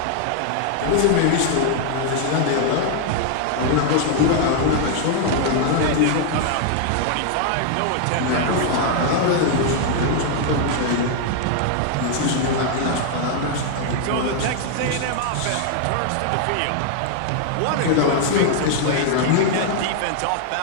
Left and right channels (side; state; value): both; different; correlation 0.00